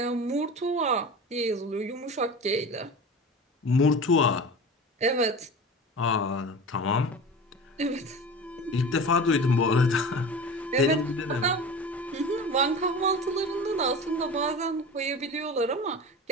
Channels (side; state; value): both; normal; correlation 0.33